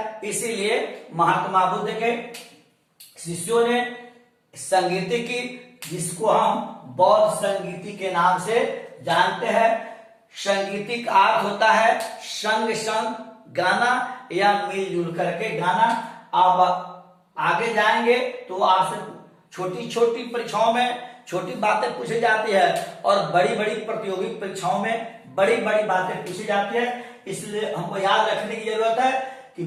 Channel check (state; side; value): identical; both; correlation 1.00